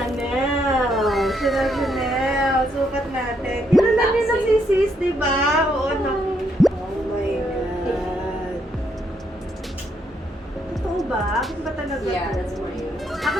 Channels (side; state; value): both; normal; correlation 0.75